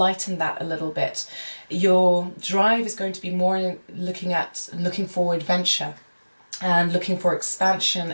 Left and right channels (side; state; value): both; inverted; correlation -1.00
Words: that a little bit. Your drive is going to be more looking for adventure and looking for expansion